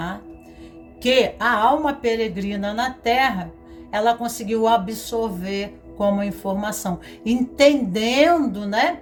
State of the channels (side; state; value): both; identical; correlation 1.00